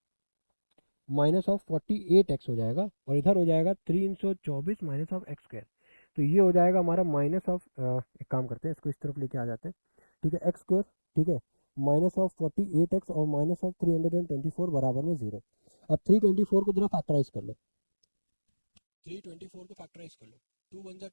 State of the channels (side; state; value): both; inverted; correlation -1.00